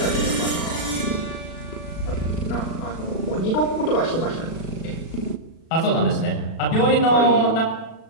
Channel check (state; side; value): late; right; 36 ms